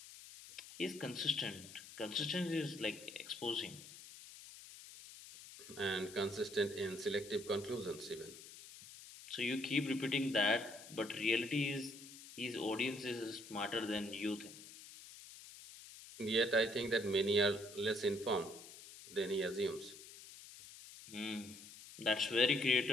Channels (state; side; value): noise; left; hiss, 16 dB below the sound